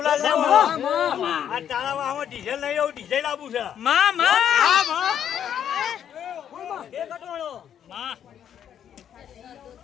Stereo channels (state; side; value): quieter; right; 9.3 dB